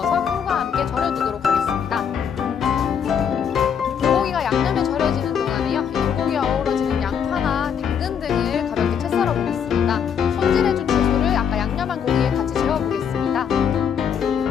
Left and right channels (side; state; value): right; quieter; 7.7 dB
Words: 꿀과 함께 절여두도록 하겠습니다. 불고기가 양념에 절여지는 동안에요. 이 불고기에 어우러지는 양파나 당근 등을 가볍게 채 썰어 보겠습니다. 손질해준 채소를 아까 양념한 고기에 같이 재워보겠습니다.